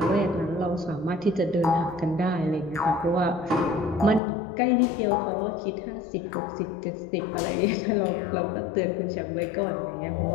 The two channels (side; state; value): right; drops out; at 4.2 s